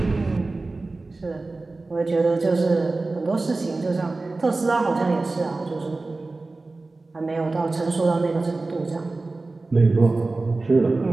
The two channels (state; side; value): quieter; left; 3.4 dB